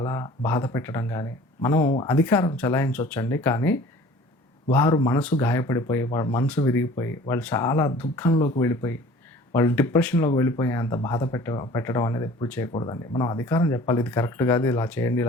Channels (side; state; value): both; normal; correlation 0.47